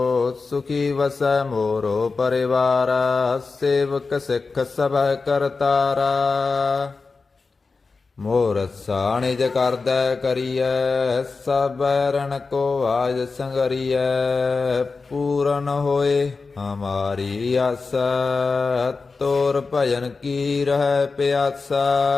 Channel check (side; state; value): right; quieter; 4.3 dB